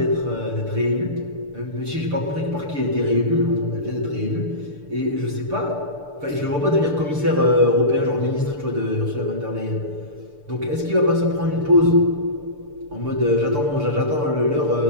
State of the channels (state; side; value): late; left; 6.8 ms